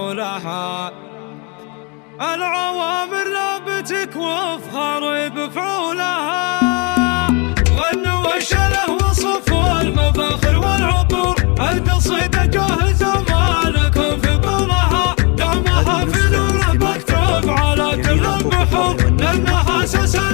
العوامر لا بتكوف خريب فعولها. غنوا وشله وصفوا المفاخر والعطور، القصيدة جاهزة مالكم في بالها، دمها في نور مكتوب على كل البحور، لأنها أساس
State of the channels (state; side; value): quieter; right; 31.8 dB